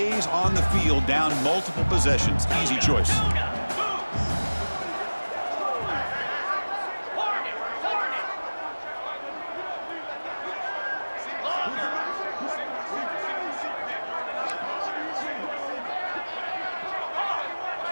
on the field, down multiple possessions. Easy choice.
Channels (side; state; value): both; inverted; correlation -1.00